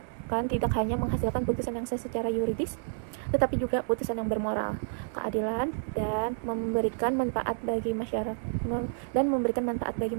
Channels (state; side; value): silent; left; digital silence